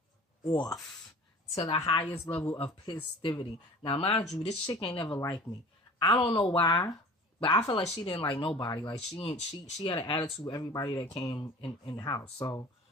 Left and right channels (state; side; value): normal; both; correlation 0.42